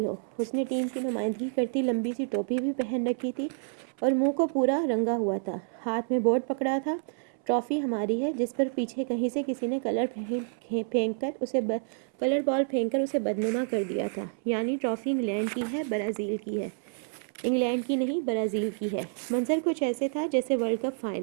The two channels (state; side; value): silent; left; 59 dB below the other